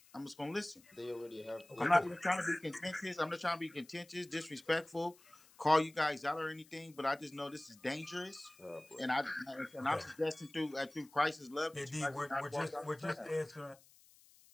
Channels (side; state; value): left; noise; hiss, 26 dB below the sound